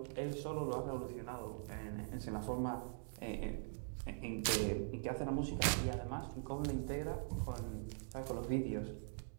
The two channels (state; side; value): silent; left; digital silence